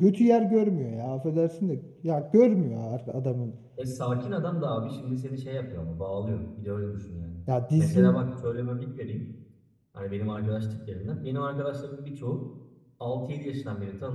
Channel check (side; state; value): both; identical; correlation 1.00